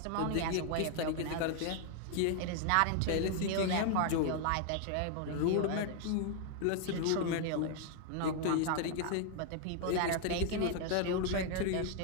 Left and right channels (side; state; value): both; different; correlation 0.00